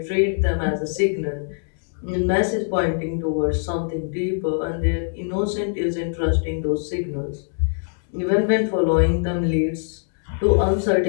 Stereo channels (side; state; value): right; silent; digital silence